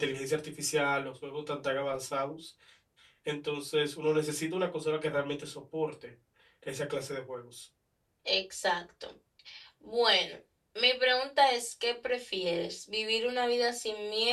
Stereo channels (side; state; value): both; identical; correlation 1.00